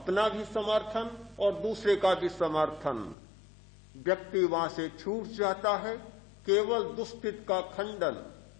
भी समर्थन और दूसरे का भी समर्थन। व्यक्ति वहां से छूट जाता है, केवल दुष्कृत का खंडन,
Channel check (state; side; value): drops out; right; at 3.2 s